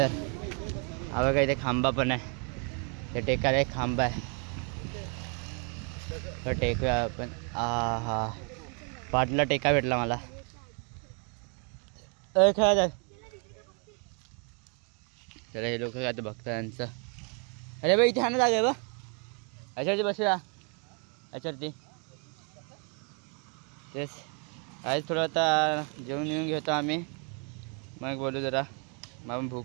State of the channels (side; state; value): left; quieter; 38.1 dB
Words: हवं काय इथे खांबा पण आहे ते टेकायला एक खांबा आहे तर टेकूया आपण. हा पाटला टेका भेटला मला खेळा जाय. चला हे लोक काय बघता यांचं. अरे बाई इथे हा ना जागा आहे बा याच्यावरती बसूया याच्यावरती तेच आज थोडं आता जेवण येऊन घेतो आम्ही मग बोलू जरा. मग